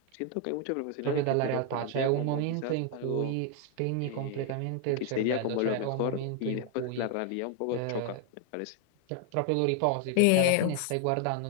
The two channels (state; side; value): different; both; correlation 0.01